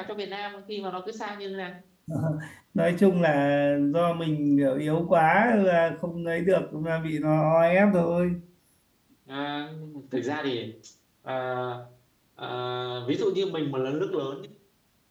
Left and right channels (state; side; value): identical; both; correlation 1.00